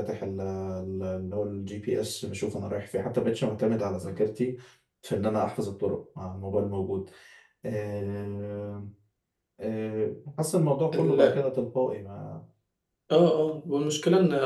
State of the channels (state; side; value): identical; both; correlation 1.00